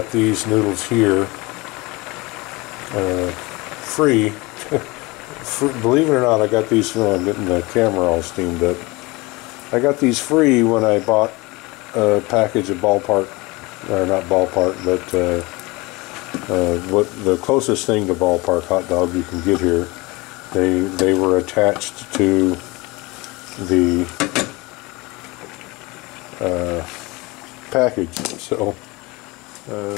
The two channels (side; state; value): right; quieter; 23.9 dB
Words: these noodles here, free. Believe it or not, I got these. I'm getting the camera all steamed up. I got these free when I bought a package of Ballpark, or not Ballpark, but what the closest thing to Ballpark hot dog you can get here. They were attached to the package, so